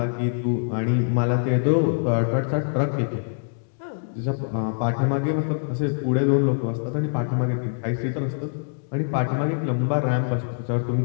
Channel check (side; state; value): right; silent; digital silence